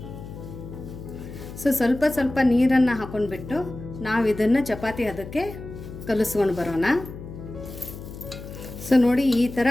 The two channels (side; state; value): left; noise; hum, 12 dB below the sound